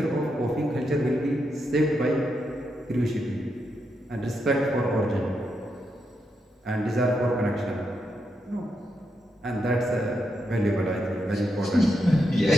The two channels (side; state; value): both; normal; correlation 0.83